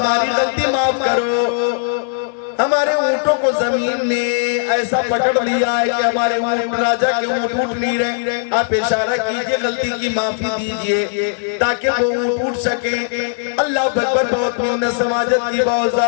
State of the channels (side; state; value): right; silent; digital silence